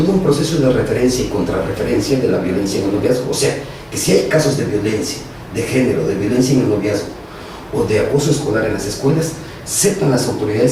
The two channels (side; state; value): both; identical; correlation 1.00